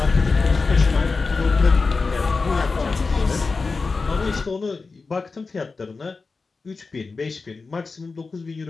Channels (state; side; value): quieter; right; 4.2 dB